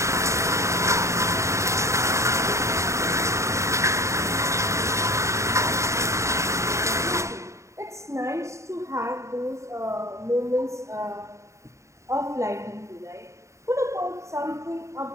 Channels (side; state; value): left; late; 0.14 ms